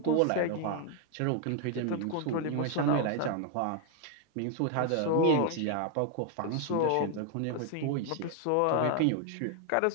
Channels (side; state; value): both; different; correlation 0.01